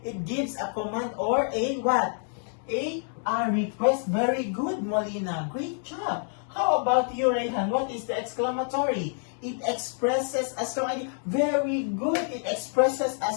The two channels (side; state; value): right; silent; 60 dB below the other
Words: It gives a command or a what? A request. Very good, Molina. Great job. How about you, Rayhan? What is the exclamatory? It expresses a strong idea. Very good. It expresses a